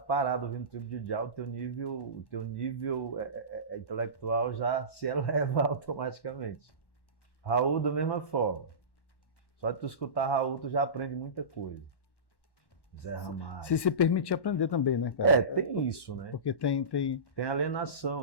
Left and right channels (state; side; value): late; right; 1.1 ms